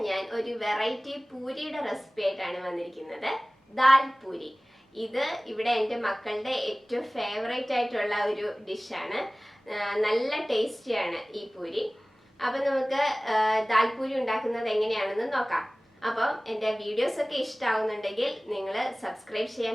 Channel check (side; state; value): both; normal; correlation 0.98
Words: ഞാൻ ഒരു വെറൈറ്റി പൂരിയുടെ റെസിപ്പി ആയിട്ടാണ് വന്നിരിക്കുന്നത്. ദാൽ പൂരി. ഇത് ഇവിടെ എൻ്റെ മക്കളുടെ ഏറ്റവും ഫേവറേറ്റ് ആയിട്ടുള്ള ഒരു ഡിഷാണ്. നല്ല ടേസ്റ്റിയാണ് ഈ പൂരി. അപ്പം നമുക്ക് ദാൽപൂരി ഉണ്ടാക്കുന്നത് എങ്ങനെയാണെന്ന് നോക്കാം. അപ്പം എൻ്റെ വീഡിയോസൊക്കെ ഇഷ്ടമാവുന്നുണ്ടെങ്കിൽ നിങ്ങൾ സബ്സ്ക്രൈബ്